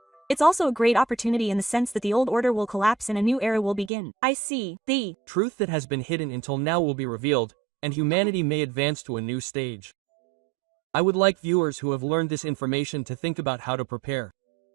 It's also a great opportunity in the sense that the old order will collapse and a new era will begin. I see. The truth that has been hidden until now will be revealed, and humanity may advance to a new stage. I would like viewers who have learned this information to think about how to prepare.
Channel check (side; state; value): left; drops out; at 3.9 s